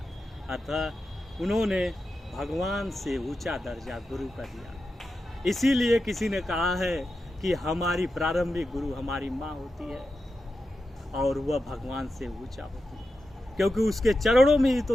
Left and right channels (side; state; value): both; normal; correlation 0.90